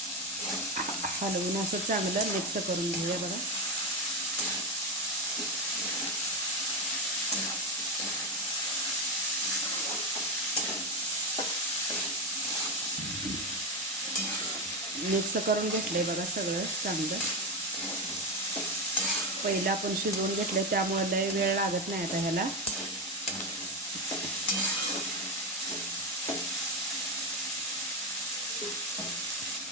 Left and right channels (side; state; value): both; normal; correlation 0.13